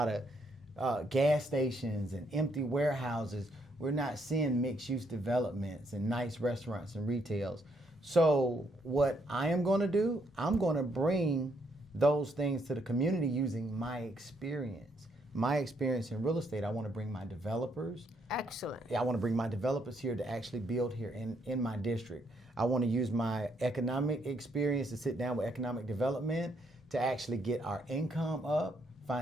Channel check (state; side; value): normal; both; correlation 0.73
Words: of gas stations and empty warehouses. We're not seeing mixed-use developments and nice restaurants and retails. So what I am going to do, I'm going to bring those things to the community using my experience. My experience in real estate, I want to bring my developers. Excellent. I want to bring my developers here to actually build here in my district. I want to use my economic experience to sit down with economic development to actually get our income up,